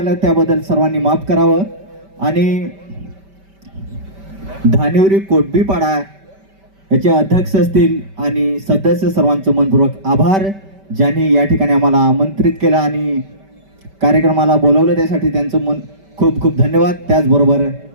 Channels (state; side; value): late; left; 5.1 ms